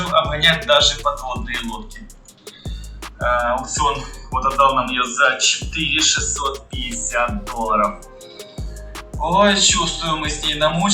обгонять даже подводные лодки. Аукцион вот отдал нам ее за $4650. Ой, чувствую, мы с ней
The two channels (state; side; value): identical; both; correlation 1.00